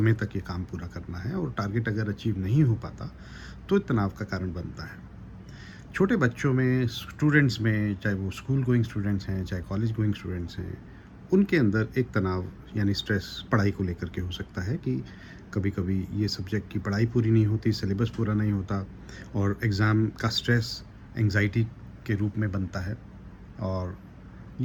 तक ये काम पूरा करना है और टारगेट अगर अचीव नहीं हो पाता तो तनाव का कारण बनता है। छोटे बच्चों में, स्टूडेंट्स में, चाहे वो स्कूल गोइंग स्टूडेंट्स हैं चाहे कॉलेज गोइंग स्टूडेंट्स हैं, उनके अंदर एक तनाव यानी स्ट्रेस पढ़ाई को लेकर के हो सकता है कि कभी कभी ये सब्जेक्ट की पढ़ाई पूरी नहीं होती, सिलेबस पूरा नहीं होता और एग्ज़ाम का स्ट्रेस एंजाइटी के रूप में बनता है। और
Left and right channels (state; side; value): identical; both; correlation 1.00